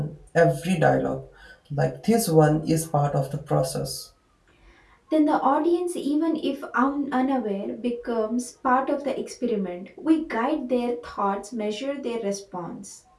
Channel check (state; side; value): identical; both; correlation 1.00